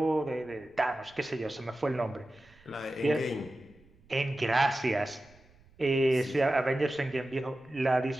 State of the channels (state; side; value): noise; right; rumble, 29 dB below the sound